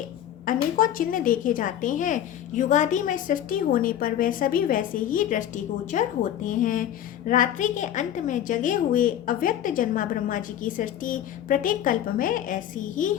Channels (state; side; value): quieter; right; 10.9 dB